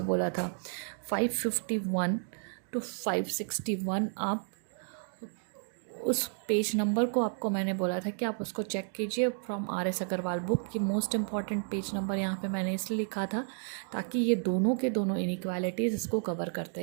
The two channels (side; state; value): left; silent; 56 dB below the other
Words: बोला था, 551 to 561। आप उस पेज नंबर को आपको मैंने बोला था कि आप उसको चेक कीजिए फ्रॉम RS अग्रवाल बुक की। मोस्ट इम्पॉर्टेंट पेज नंबर यहाँ पे मैंने इसलिए लिखा था ताकि ये दोनों के दोनों इनइक्वालिटीज़ इसको कवर करते